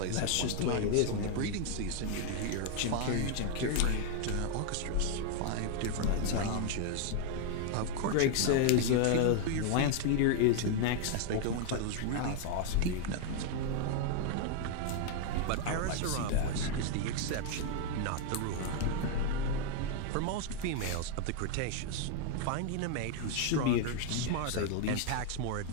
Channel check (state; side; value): different; both; correlation 0.00